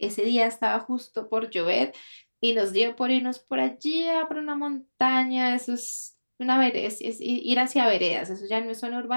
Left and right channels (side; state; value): both; inverted; correlation -1.00